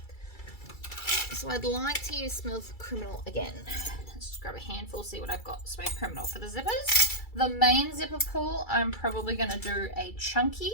so I'd like to use Smooth Criminal again. Let's just grab a handful, see what I've got. Smooth Criminal for the zippers. The main zipper pull, I'm probably going to do a chunky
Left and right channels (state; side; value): late; right; 2.3 ms